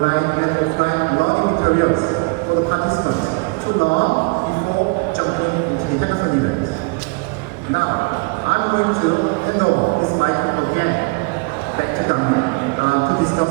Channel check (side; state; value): left; quieter; 29.6 dB